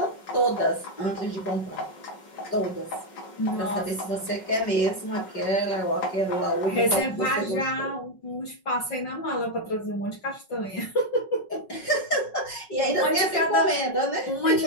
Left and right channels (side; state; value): right; late; 5.4 ms